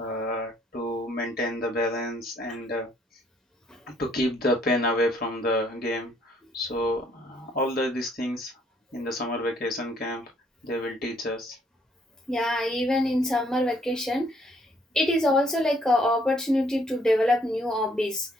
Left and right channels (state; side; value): normal; both; correlation 0.66